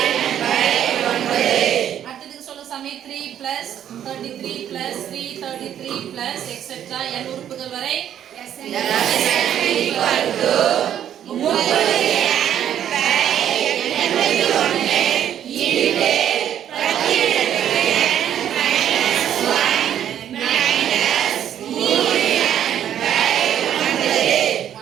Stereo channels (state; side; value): quieter; left; 10.2 dB